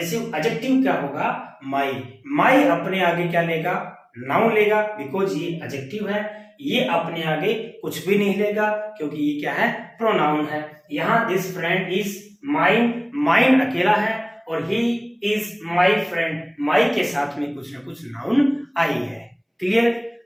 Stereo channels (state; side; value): identical; both; correlation 1.00